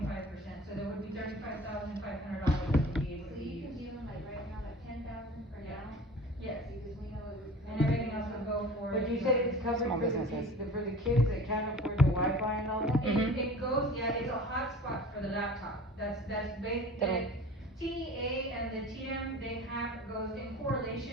so there would be $35,500 that would be able to So be you can used. give them like right now, like 10,000 for Yeah. now? Yes, Because we know it would. and everything else would go for. But you said it's covered Small for the businesses. for the kids that can't afford the Wi-Fi and all that? It goes, yeah, it's a hotspot for the laptop, that's basic. That'll- TEA and the TM, they have, goes in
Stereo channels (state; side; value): normal; both; correlation 0.41